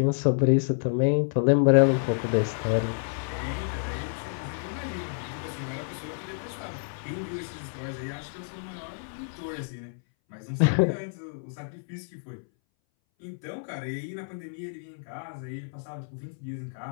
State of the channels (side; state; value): right; silent; 59 dB below the other